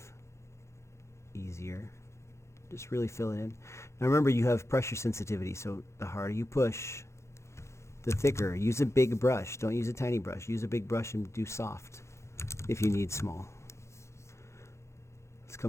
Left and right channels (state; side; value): late; right; 0.14 ms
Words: easier. Just really fill it in. Now remember, you have pressure sensitivity, so the harder you push, the thicker. Use a big brush. Don't use a tiny brush. Use a big brush and do soft if you need small. Let's